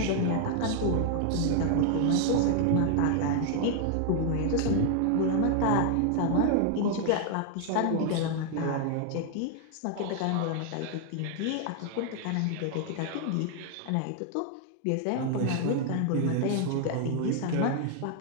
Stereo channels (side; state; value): both; different; correlation 0.00